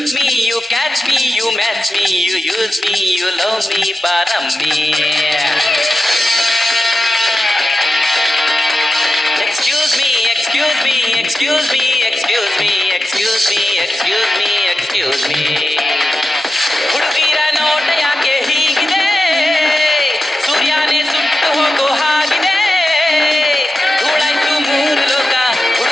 me, you catch me, you match me, you use me, you love me, baram me. Excuse me, excuse me, excuse me, excuse me, excuse me, excuse me, excuse me. ಹುಡುಗಿರ ನೋಟ ಯಾಕೆ ಹೀಗಿದೆ, ಸೂರ್ಯನೇ ಸುಟ್ಟು ಹೋಗೋ ಹಾಗಿದೆ. ಧೂಳಾಯ್ತು ಮೂರು ಲೋಕ,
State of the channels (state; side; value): normal; both; correlation 0.91